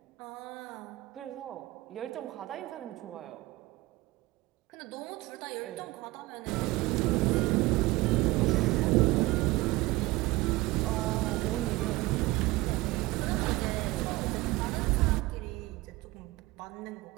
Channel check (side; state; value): left; quieter; 20.1 dB